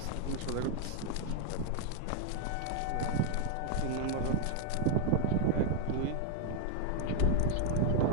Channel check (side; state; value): both; different; correlation 0.00